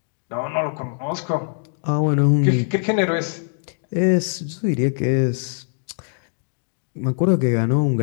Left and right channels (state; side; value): silent; right; 64 dB below the other